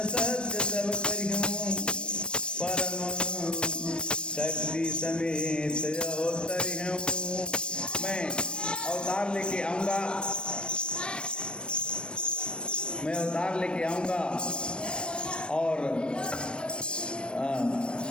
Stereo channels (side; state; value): right; late; 0.056 ms